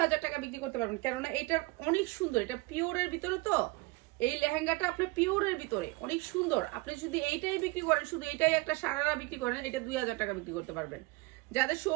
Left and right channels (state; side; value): quieter; left; 23.5 dB